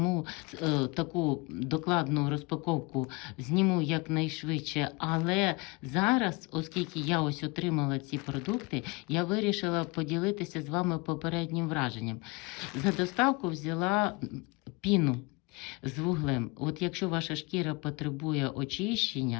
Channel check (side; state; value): right; quieter; 26.1 dB